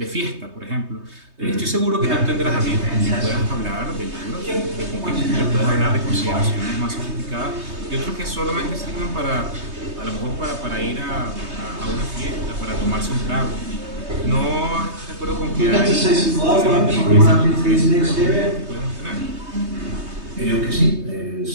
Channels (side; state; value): left; late; 3.2 ms